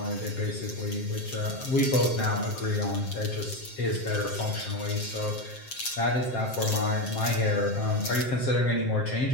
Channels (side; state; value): right; late; 7.5 ms